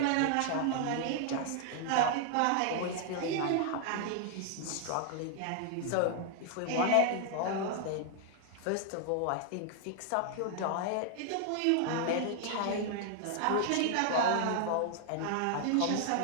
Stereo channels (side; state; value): both; different; correlation 0.00